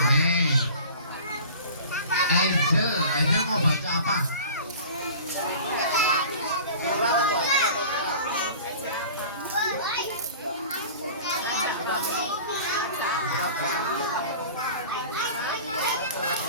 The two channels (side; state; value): both; inverted; correlation -0.41